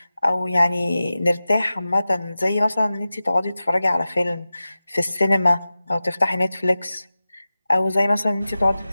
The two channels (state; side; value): inverted; both; correlation -0.94